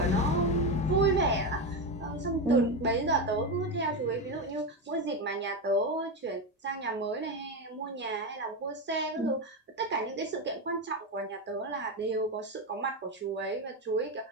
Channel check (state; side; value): normal; both; correlation 0.13